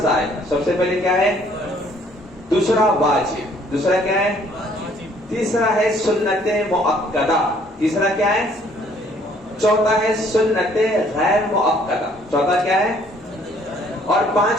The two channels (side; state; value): both; normal; correlation 0.61